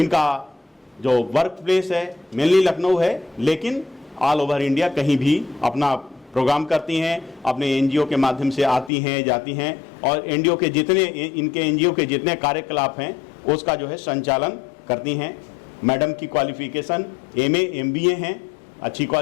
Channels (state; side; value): drops out; right; at 8.9 s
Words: जो वर्क प्लेस है मेनली लखनऊ है, लेकिन ऑल ओवर इंडिया कहीं भी अपना प्रोग्राम करती हैं, अपने NGO के माध्यम से आती हैं, जाती हैं, और NGO के जितने इनके NGO के जितने कार्यकलाप हैं उसका जो है संचालन करती हैं। मैडम की क्वालिफ़िकेशन MA MBA हैं, अच्छी